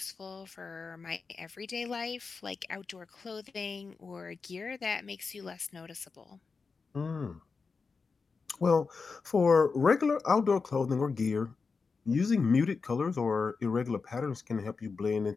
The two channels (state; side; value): quieter; right; 4.8 dB